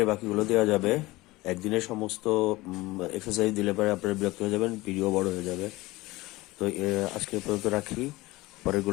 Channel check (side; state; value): right; quieter; 20.1 dB